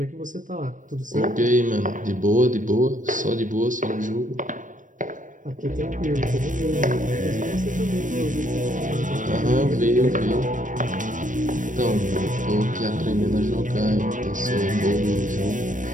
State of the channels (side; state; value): left; late; 0.37 ms